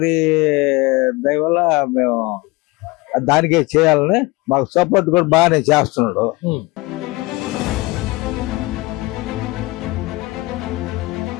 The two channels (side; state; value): right; quieter; 22.7 dB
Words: దయ వల్ల మేము దానికే చేయాలని మాకు సపోర్ట్ కూడా బాగానే చేస్తున్నాడు.